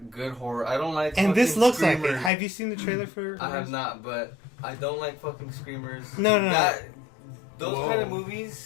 good horror. I don't like. And this fucking looks like it. screamers. Have you seen the trailer for? I have not, but I don't like fucking screamers. No. Those Whoa. kind of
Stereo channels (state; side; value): drops out; right; at 2.3 s